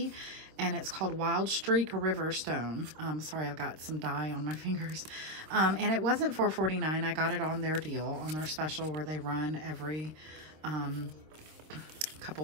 And it's called Wild Streak Riverstone. Sorry, I've got some dye on my fingers. And it wasn't $4.49. I got it on their deal, on their special where they run every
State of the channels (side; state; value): left; late; 26 ms